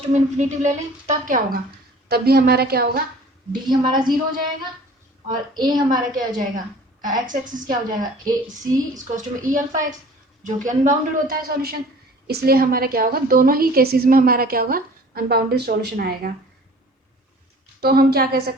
टू में इन्फिनिटी ले लें तब क्या होगा, तब भी हमारा क्या होगा, डी हमारा 0 हो जाएगा, और ए हमारा क्या हो जाएगा, एक्स एक्सिस क्या हो जाएगा, ए सी इक्वल्स टू में ई अल्फा एक्स, जो कि अनबाउंडेड होता है सॉल्यूशन। इसलिए हमारा क्या होगा, दोनों ही केसेस में हमारा क्या होगा, अनबाउंडेड सॉल्यूशन आएगा। तो हम क्या कह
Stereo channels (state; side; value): normal; both; correlation 0.48